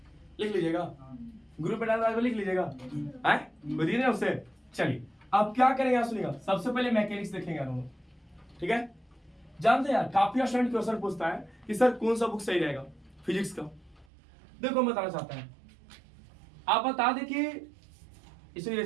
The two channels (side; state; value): left; drops out; at 14.1 s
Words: लिख लीजिएगा, ग्रुप पे डाल लिख लीजिएगा, है बताइए ना उससे। चलिए अब क्या करेंगे आप सुनिएगा, सबसे पहले मैकेनिक्स देखेंगे हम, ठीक है। जानते हैं यार काफी स्टूडेंट क्वेश्चन पूछता है कि सर कौन सा बुक सही रहेगा फिजिक्स का। देखो मैं बताना चाहता है, आप बता दे कि इसे